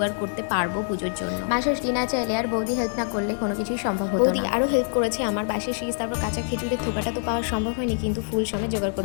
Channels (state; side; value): silent; right; 62 dB below the other